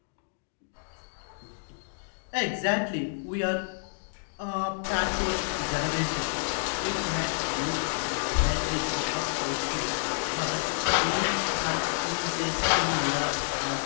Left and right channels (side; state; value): right; silent; digital silence